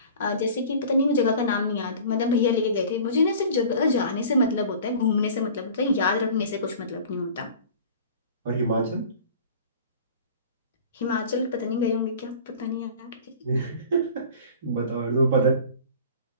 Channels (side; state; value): both; inverted; correlation -0.42